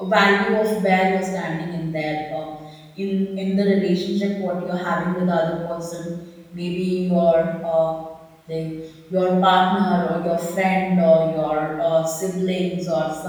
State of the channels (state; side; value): identical; both; correlation 1.00